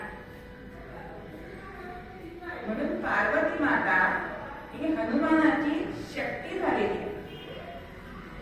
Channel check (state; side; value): identical; both; correlation 1.00